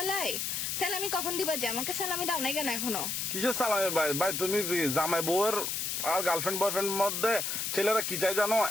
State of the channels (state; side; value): noise; left; hiss, 2 dB below the sound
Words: স্যালামি কখন দিবা? যে আমাকে স্যালামি দাও নাই কেন এখনো? কিসের সালামে ভাই? ভাই তুমি জামাই বউয়ের আর গার্লফ্রেন্ড বয়ফ্রেন্ড মধ্যে ছেলেরা কি চাই জানো?